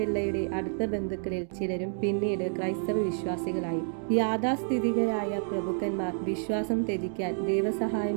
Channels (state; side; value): silent; left; 58 dB below the other